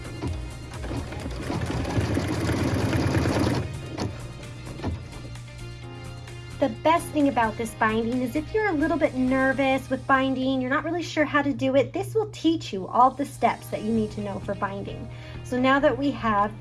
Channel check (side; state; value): both; identical; correlation 1.00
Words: The best thing about this binding is if you're a little bit nervous with binding, you're not really sure how to do it, this will teach you all the steps that you need to know for binding. So now that we have